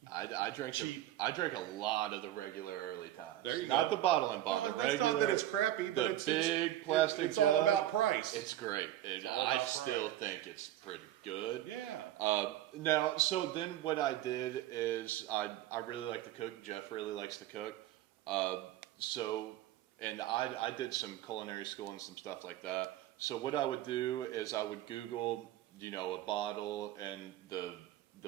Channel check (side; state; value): left; quieter; 13.5 dB